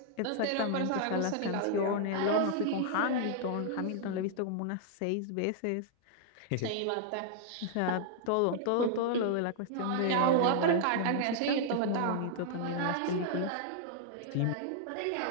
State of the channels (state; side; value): different; both; correlation -0.01